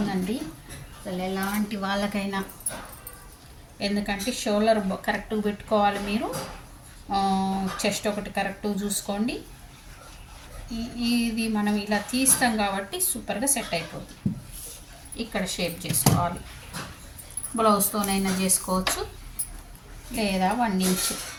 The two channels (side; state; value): both; identical; correlation 1.00